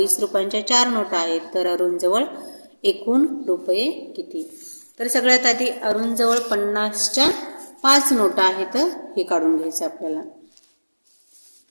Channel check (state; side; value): inverted; both; correlation -1.00